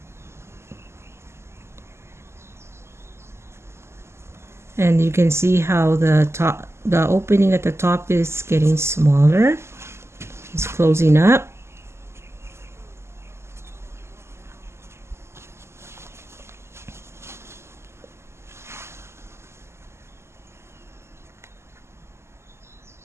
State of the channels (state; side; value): late; left; 0.13 ms